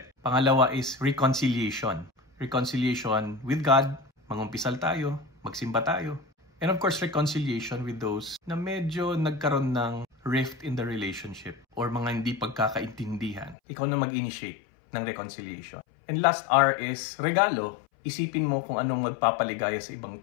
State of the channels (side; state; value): right; drops out; at 13.6 s